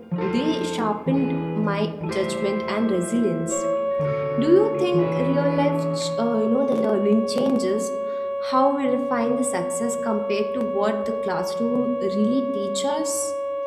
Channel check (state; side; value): identical; both; correlation 1.00